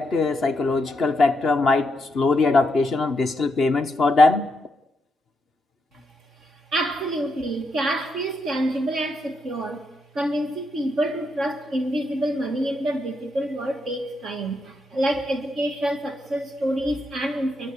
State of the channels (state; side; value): normal; both; correlation 0.81